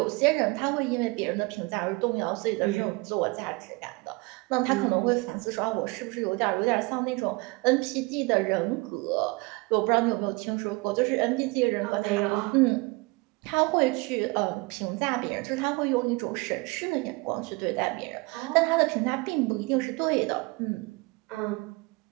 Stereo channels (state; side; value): quieter; left; 25.8 dB